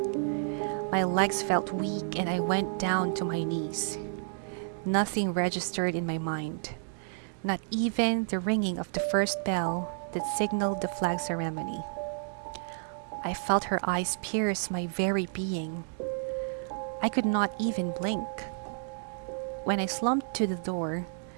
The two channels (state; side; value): silent; left; digital silence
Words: My legs felt weak and I went down to my knees. Nothing registered in my mind, not even the ringing of the first bell that signaled the flag ceremony. I felt her eyes pierce my very being. I could not even blink. When I slumped to the door,